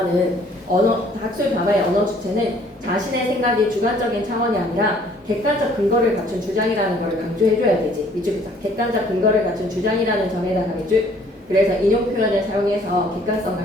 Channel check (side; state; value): both; normal; correlation 0.59